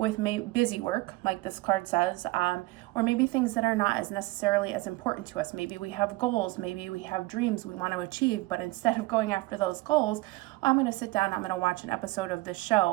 busy work, like this card says, or maybe things that are not as necessarily as important to us. Maybe we have goals, maybe we have dreams we want to achieve, but instead of going after those goals, I'm going to sit down, I'm going to watch an episode of this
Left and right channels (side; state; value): left; quieter; 20.7 dB